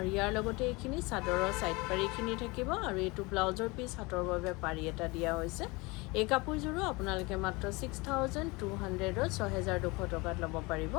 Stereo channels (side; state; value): right; quieter; 25.1 dB